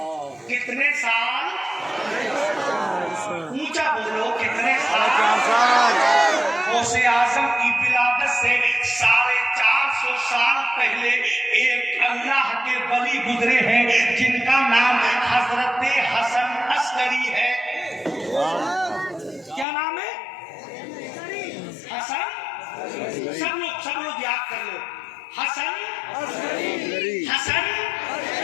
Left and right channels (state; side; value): drops out; right; at 19.7 s